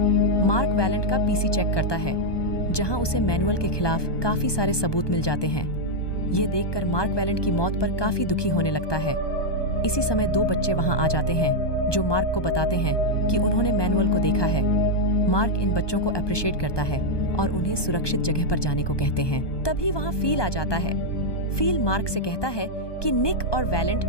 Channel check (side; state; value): right; late; 1.2 ms